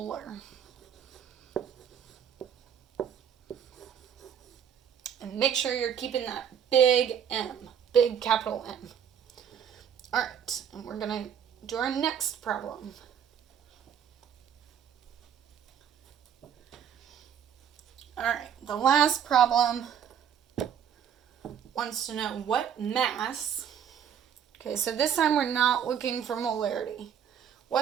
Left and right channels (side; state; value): left; quieter; 8.6 dB